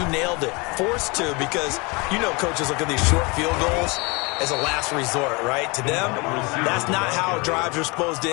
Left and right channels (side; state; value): right; quieter; 27.6 dB